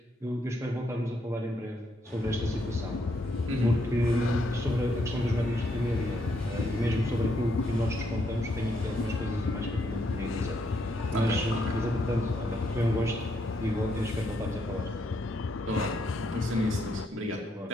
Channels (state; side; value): normal; both; correlation 0.76